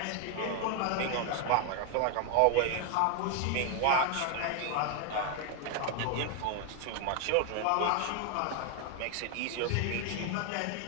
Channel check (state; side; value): different; both; correlation 0.01